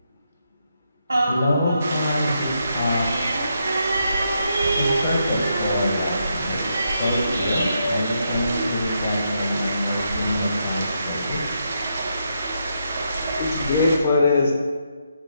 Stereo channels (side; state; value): both; inverted; correlation -0.80